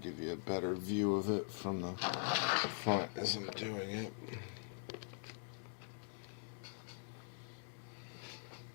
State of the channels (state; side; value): silent; right; digital silence